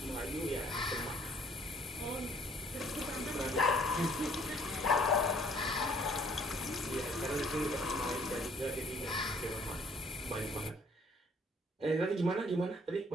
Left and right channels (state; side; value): normal; both; correlation 0.60